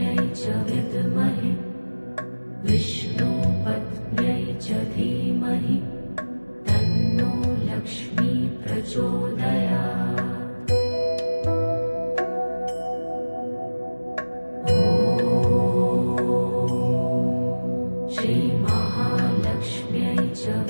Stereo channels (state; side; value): inverted; both; correlation -1.00